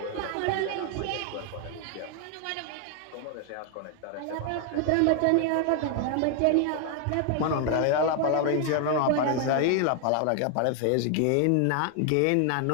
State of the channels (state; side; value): different; both; correlation 0.00